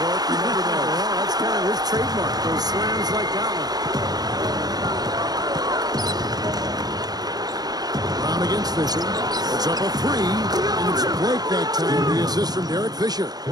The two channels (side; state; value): left; late; 0.19 ms